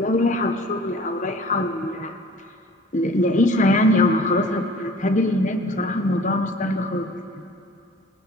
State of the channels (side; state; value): both; normal; correlation 0.48